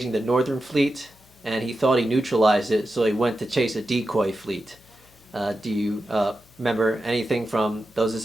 the Northern Fleet, and he thought he neutralized it, so he went to chase a decoy fleet. Do you remember anything from those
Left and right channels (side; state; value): left; noise; hum, 29 dB below the sound